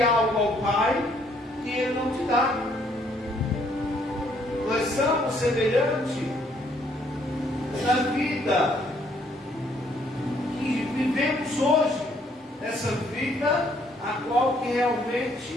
algo ao Pai que Ele não te dá. Nós somos semelhantes na vida que vivemos hoje, essa vida a qual que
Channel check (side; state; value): both; normal; correlation 0.67